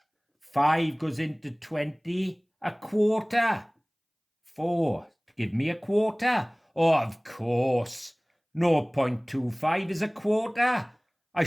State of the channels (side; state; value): both; identical; correlation 1.00